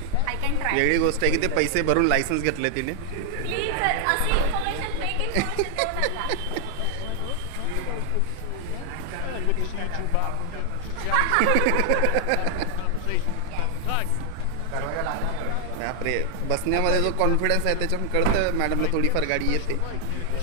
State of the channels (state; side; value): different; both; correlation 0.00